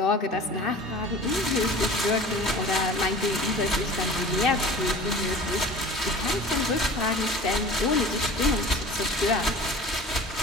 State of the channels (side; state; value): both; normal; correlation 0.40